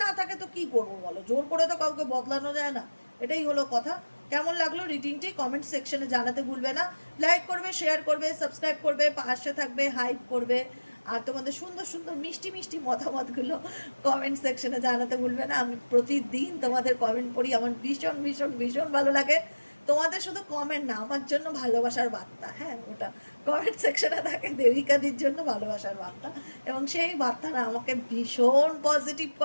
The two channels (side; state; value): both; inverted; correlation -1.00